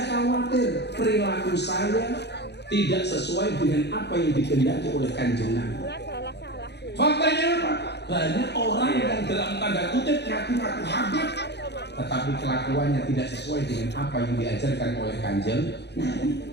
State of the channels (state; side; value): late; right; 0.49 ms